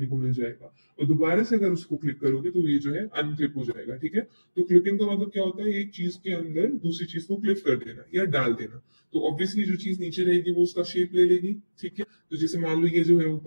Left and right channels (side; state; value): both; inverted; correlation -1.00